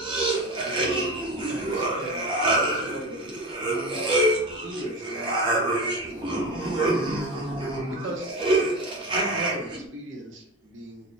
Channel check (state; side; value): normal; both; correlation 0.24